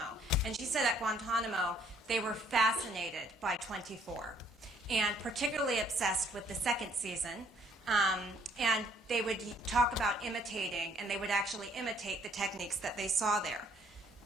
And she said at Guantanamo, they were fascinated by 24, and particularly obsessed with the second season. And they would talk about imitating, and they would actually imitate the techniques that they saw there.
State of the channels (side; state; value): both; normal; correlation 0.63